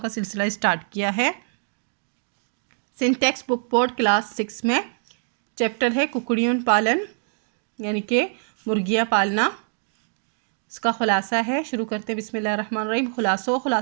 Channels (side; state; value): left; silent; digital silence